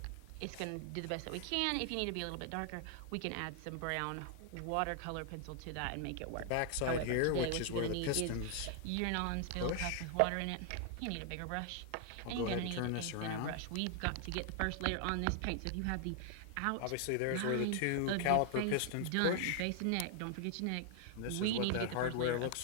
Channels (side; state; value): both; different; correlation 0.00